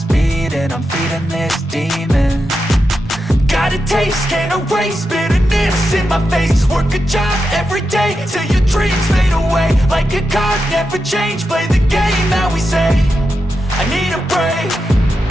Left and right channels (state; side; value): normal; both; correlation 0.88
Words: beating. I'm feeding this demon. Got a taste, can't erase bitterness in my face. Work a job every day till your dreams fade away. Like a card, never change, play the game that we say. I need a break.